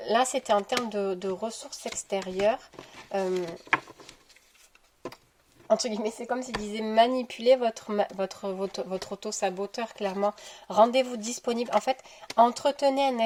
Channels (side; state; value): both; identical; correlation 1.00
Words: Là, c'était en termes de ressources extérieures. Entre guillemets, c'est comme s'il disait manipuler votre auto-saboteur, clairement. Rendez-vous disponible. En fait, entretenez un